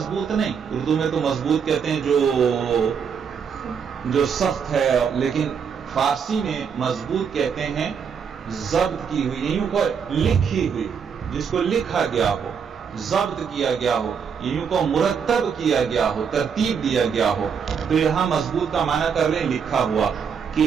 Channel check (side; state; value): left; quieter; 6.7 dB